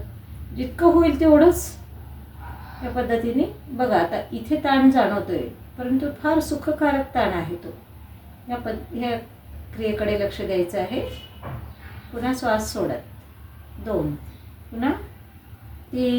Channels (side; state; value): both; identical; correlation 1.00